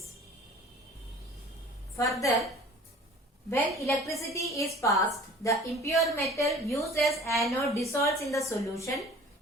Further, when electricity is passed, the impure metal used as anode dissolves in the solution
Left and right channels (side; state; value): both; normal; correlation 0.46